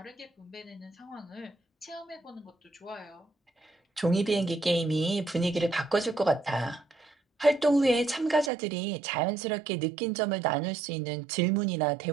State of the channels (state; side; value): drops out; left; at 8.5 s